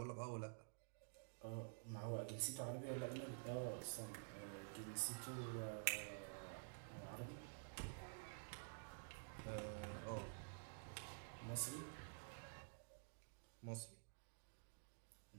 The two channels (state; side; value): silent; left; digital silence